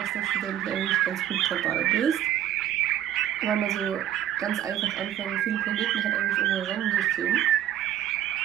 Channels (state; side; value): quieter; left; 11.4 dB